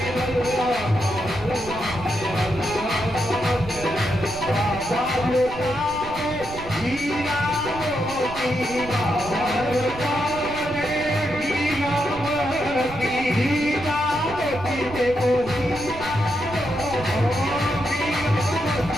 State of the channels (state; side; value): noise; right; rumble, 13 dB below the sound